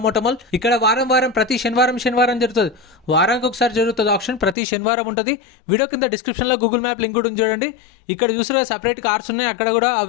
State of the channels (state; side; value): drops out; right; at 4.5 s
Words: Automall ఇక్కడ వారం ప్రతి శనివారం జరుగుతుంది వారానికి ఒకసారి జరుగుతుంది ఆక్షన్ ప్రతి శనివారం ఉంటుంది వీడియో కింద డిస్క్రిప్షన్ లో గూగుల్ మ్యాప్ లింక్ కూడా చూడండి ఇక్కడ చూసిన సెపరేట్ కార్స్ ఉన్నాయి అక్కడ కూడా